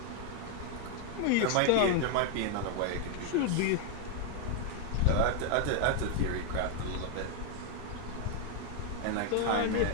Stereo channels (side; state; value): both; different; correlation 0.01